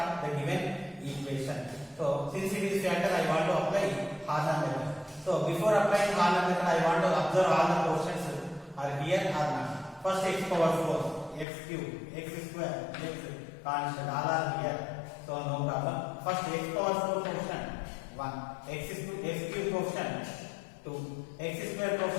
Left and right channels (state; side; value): drops out; right; at 11.5 s